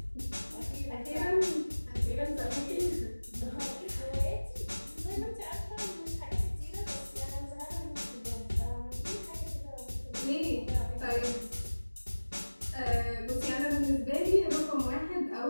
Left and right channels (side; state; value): both; inverted; correlation -1.00